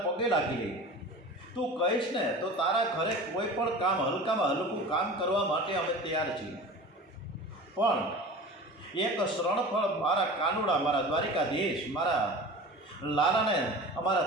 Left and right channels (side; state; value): both; normal; correlation 0.36